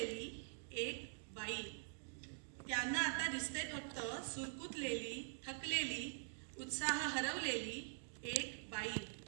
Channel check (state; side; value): silent; left; digital silence